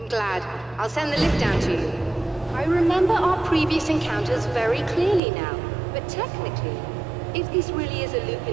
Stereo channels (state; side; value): drops out; left; at 5.2 s